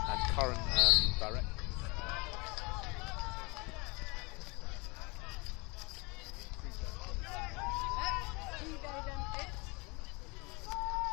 and current director.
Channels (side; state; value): right; quieter; 27.9 dB